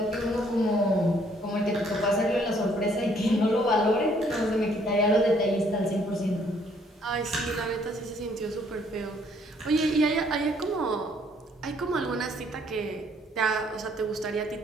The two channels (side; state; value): both; normal; correlation 0.64